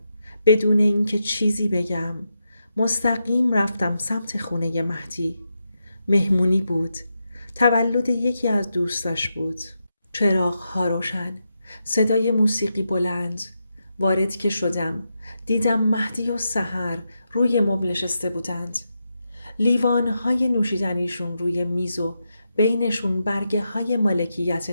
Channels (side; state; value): both; inverted; correlation -0.86